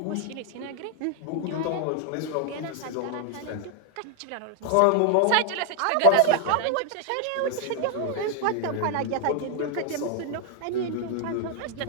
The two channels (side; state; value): both; different; correlation 0.00